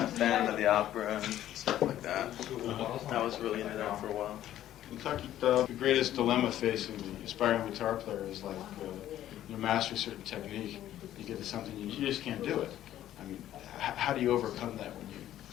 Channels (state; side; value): quieter; right; 12.5 dB